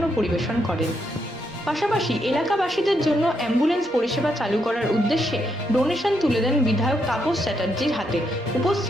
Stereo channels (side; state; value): both; normal; correlation 0.78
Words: পরিবেশন করেন। পাশাপাশি এলাকাবাসীদের জন্য অ্যাম্বুলেন্স পরিষেবা চালু করার উদ্দেশ্যে ডোনেশন তুলে দেন বিধায়ক তাপস চ্যাটার্জির হাতে।